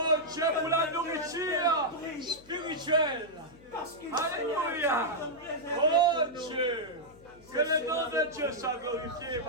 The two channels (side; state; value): left; noise; hum, 26 dB below the sound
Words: Dieu pour la nourriture spirituelle. Alléluia. Oh Dieu. Que le nom de Dieu soit glorifié,